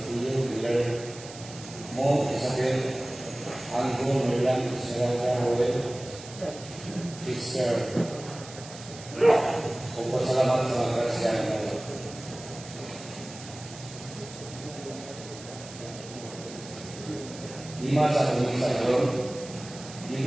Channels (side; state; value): right; noise; hiss, 15 dB below the sound